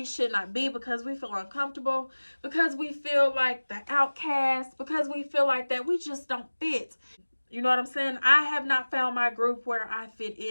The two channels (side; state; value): both; inverted; correlation -1.00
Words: should not be because we feel uncomfortable, because we feel like the outcast, because we feel like that we just don't fit. You know what I'm saying? I have not found my group where I fit